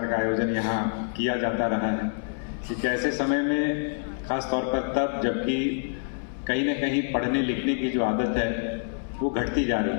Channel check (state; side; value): silent; right; 60 dB below the other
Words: का आयोजन यहाँ किया जाता रहा है। एक ऐसे समय में खास तौर पर तब जबकि कहीं न कहीं पढ़ने लिखने की जो आदत है वो घटती जा रही